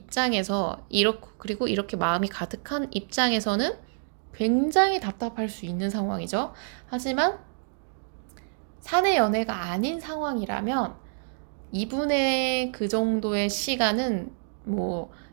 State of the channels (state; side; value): silent; left; digital silence